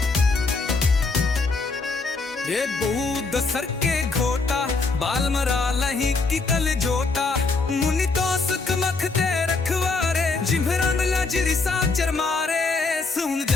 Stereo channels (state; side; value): quieter; right; 4.0 dB